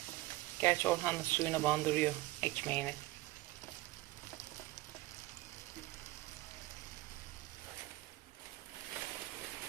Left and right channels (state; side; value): quieter; left; 19.0 dB